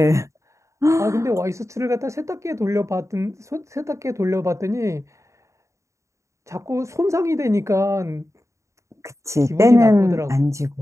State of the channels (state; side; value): late; left; 0.14 ms